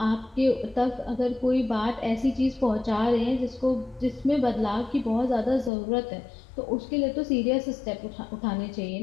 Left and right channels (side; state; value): right; drops out; at 5.7 s